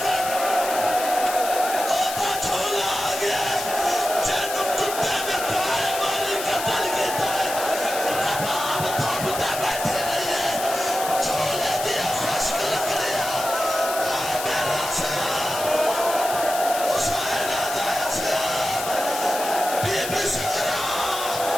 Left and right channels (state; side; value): noise; left; hiss, 7 dB below the sound